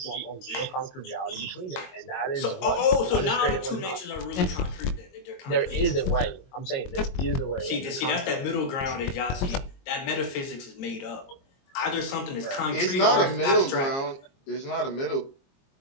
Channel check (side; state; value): right; late; 22 ms